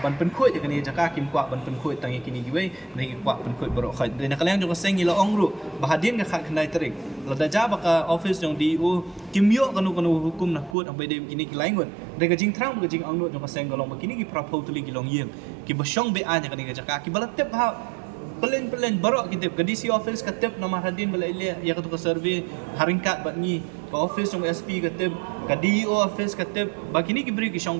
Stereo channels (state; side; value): drops out; left; at 10.8 s